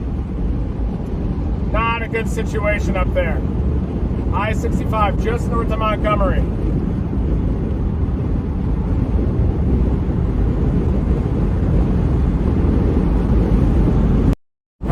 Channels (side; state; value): both; identical; correlation 1.00